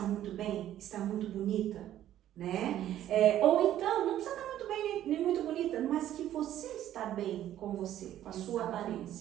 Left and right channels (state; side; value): quieter; left; 12.2 dB